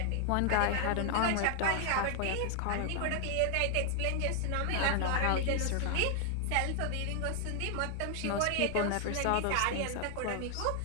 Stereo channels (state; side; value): different; both; correlation 0.00